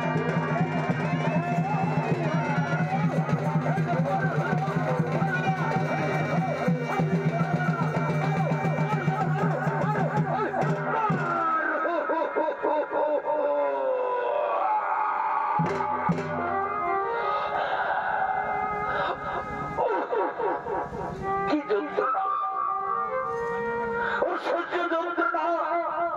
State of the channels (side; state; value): both; identical; correlation 1.00